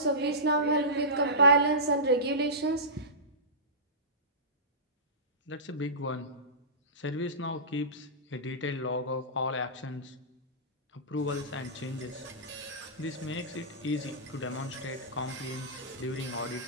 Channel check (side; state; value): both; normal; correlation -0.20